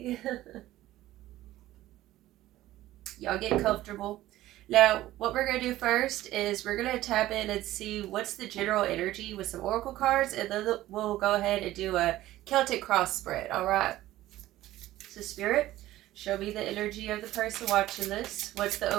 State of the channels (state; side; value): quieter; left; 15.3 dB